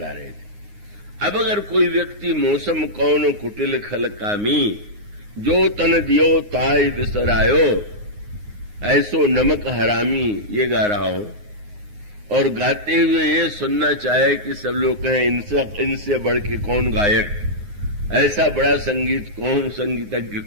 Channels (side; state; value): left; late; 9.6 ms